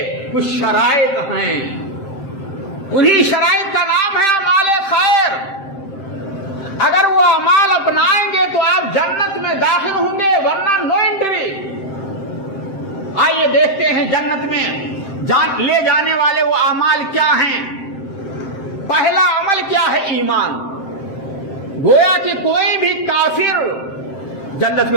کچھ شرائط ہیں، انہی شرائط کا نام ہے اعمال خیر۔ اگر وہ اعمال اپنائیں گے تو آپ جنت میں داخل ہوں گے، ورنہ نو انٹری۔ آئیے دیکھتے ہیں جنت میں لے جانے والے وہ اعمال کیا ہیں۔ پہلا عمل کیا ہے؟ ایمان۔ گویا کہ کوئی بھی کافر جنت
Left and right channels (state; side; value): late; right; 7.7 ms